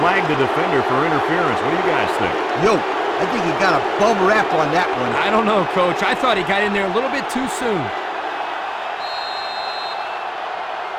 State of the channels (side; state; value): both; identical; correlation 1.00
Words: the defender for interference. What do you guys think? Yo, I think he got a bum rap on that one. I don't know, Coach. I thought he got in there a little bit too soon.